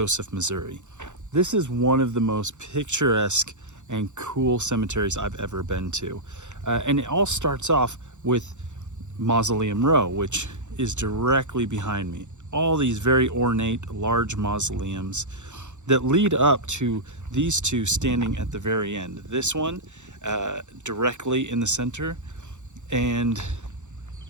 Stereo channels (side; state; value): left; late; 0.84 ms